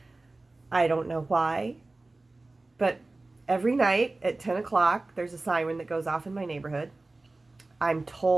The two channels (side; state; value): left; quieter; 3.1 dB